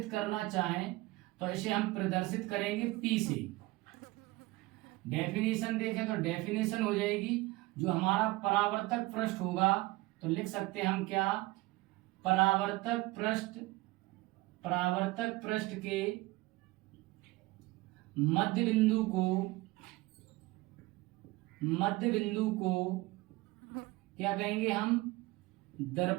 करना चाहें तो इसे हम प्रदर्शित करेंगे P से। डेफिनेशन देखें तो डेफिनेशन हो जाएगी, जो हमारा परावर्तक पृष्ठ होगा तो लिख सकते हैं हम क्या, परावर्तक पृष्ठ, परावर्तक पृष्ठ के मध्य बिंदु को, मध्य बिंदु को क्या कहेंगे हम,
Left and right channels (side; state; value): left; quieter; 20.7 dB